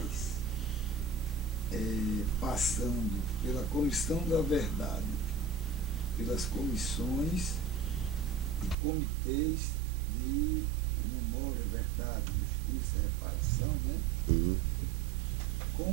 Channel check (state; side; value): drops out; left; at 8.8 s